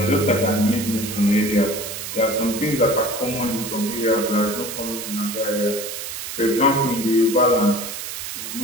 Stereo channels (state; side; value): noise; right; hiss, 7 dB below the sound